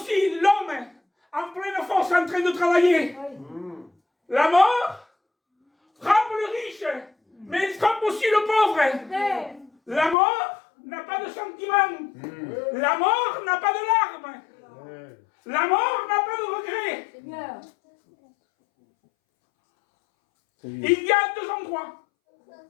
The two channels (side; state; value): right; drops out; at 10.2 s